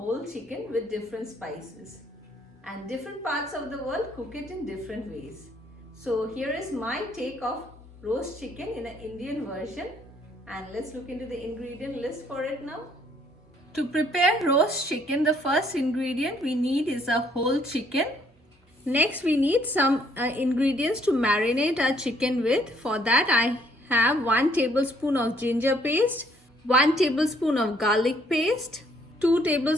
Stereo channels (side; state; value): both; normal; correlation 0.65